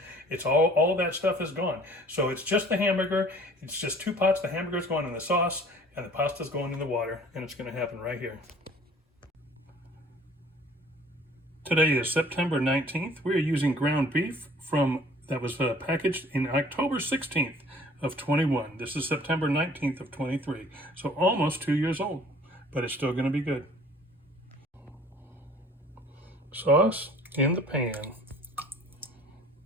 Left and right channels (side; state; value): both; normal; correlation 0.51